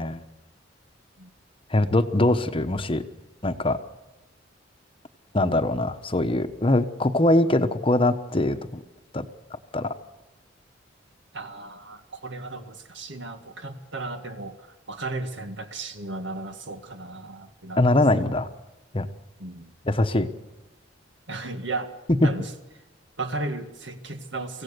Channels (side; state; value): both; normal; correlation 0.60